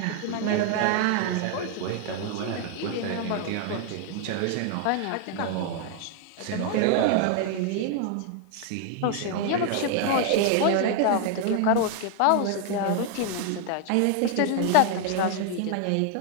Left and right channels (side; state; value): both; different; correlation 0.00